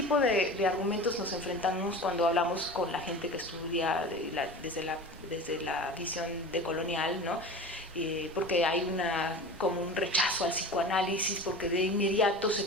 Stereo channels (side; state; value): both; normal; correlation 0.34